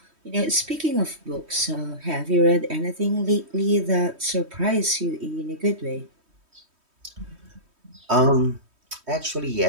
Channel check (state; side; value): late; left; 3.1 ms